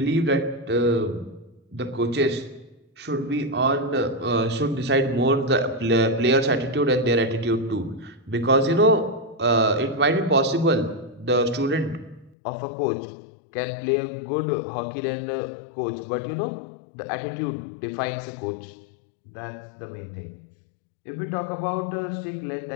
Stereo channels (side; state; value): right; drops out; at 12.4 s